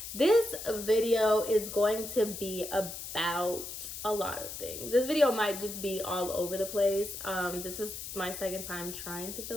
This video is going to be about a lot of things. This video might just be all over the place. This is my second time trying to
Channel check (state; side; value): noise; left; hiss, 8 dB below the sound